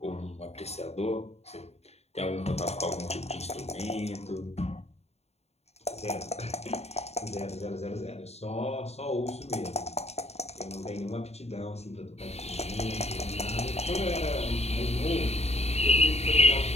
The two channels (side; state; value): right; late; 0.31 ms